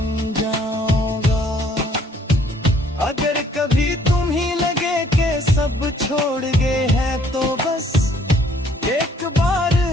जाऊंगा। अगर कभी तुम ही लगे कि सब छोड़ गए हैं तो बस एक बार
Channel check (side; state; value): both; normal; correlation 0.62